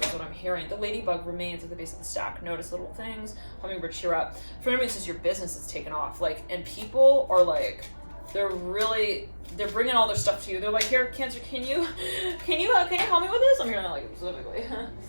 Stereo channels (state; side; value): inverted; both; correlation -1.00